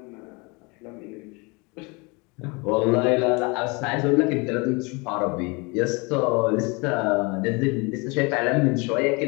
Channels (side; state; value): right; quieter; 28.4 dB